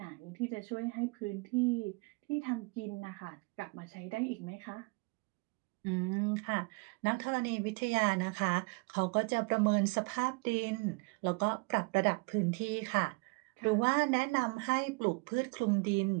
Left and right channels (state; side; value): quieter; left; 29.8 dB